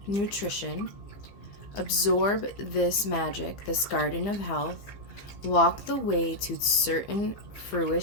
nutrition. Absorb this magic, this garden of health. Walk the way to certain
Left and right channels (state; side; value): late; right; 15 ms